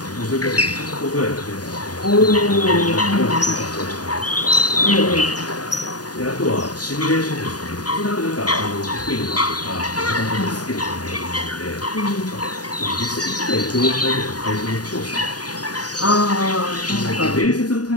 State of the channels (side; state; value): right; late; 0.68 ms